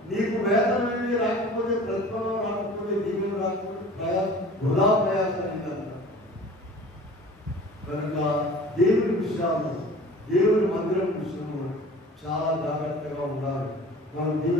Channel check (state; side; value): normal; both; correlation 0.43